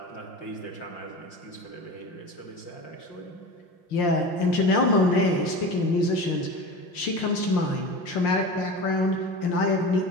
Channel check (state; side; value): late; right; 5.7 ms